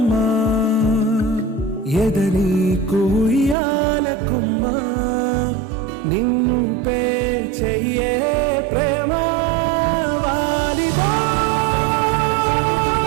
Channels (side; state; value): left; drops out; at 3.6 s